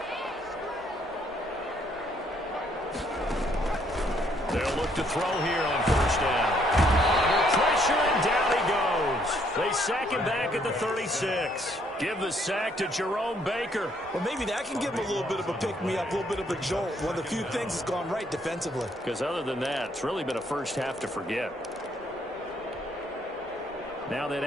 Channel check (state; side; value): normal; both; correlation 0.68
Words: They'll look to throw here on first down. Under pressure, and down he goes. They sack him back at the 36. Give the sack to Jerome Baker. Well, maybe that can give him a little bit of a pick-me-up, a little bit of a jolt. One of the few things that's gone right defensively. Because other than that, it's really been a first half to forget. Now that